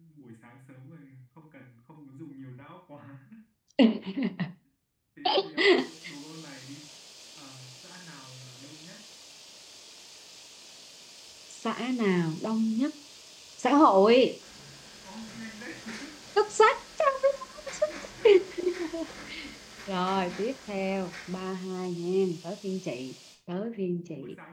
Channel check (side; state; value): both; identical; correlation 1.00